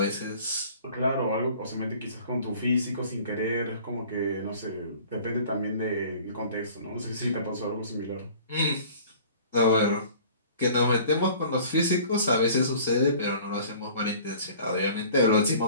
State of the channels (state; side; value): inverted; both; correlation -0.48